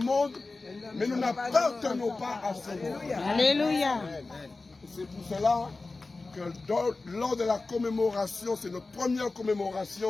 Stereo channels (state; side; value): quieter; right; 3.5 dB